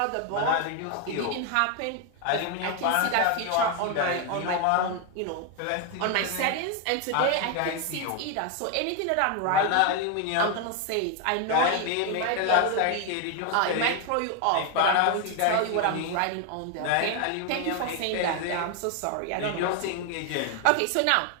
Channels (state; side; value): different; both; correlation 0.01